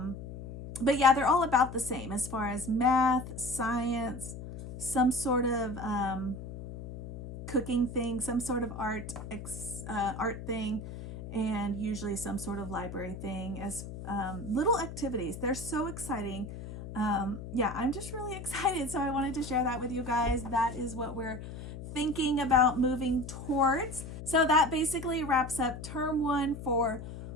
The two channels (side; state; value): left; noise; hum, 10 dB below the sound